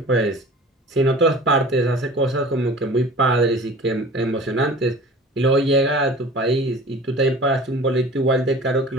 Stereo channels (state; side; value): normal; both; correlation 0.42